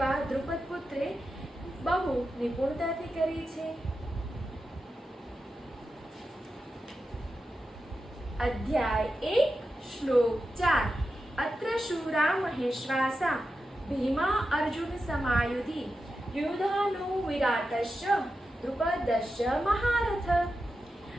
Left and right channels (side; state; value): both; normal; correlation 0.90